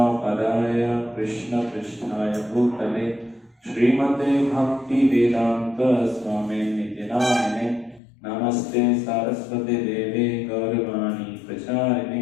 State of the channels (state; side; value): drops out; right; at 8.0 s